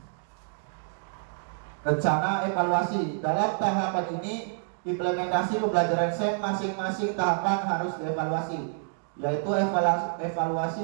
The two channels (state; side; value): silent; left; digital silence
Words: Rencana evaluasi. Dalam tahapan ini, implementasi pembelajaran SEM masing-masing tahapan harus dievaluasi, yaitu